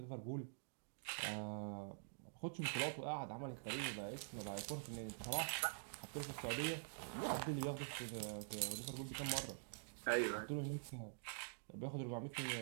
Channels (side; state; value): left; silent; digital silence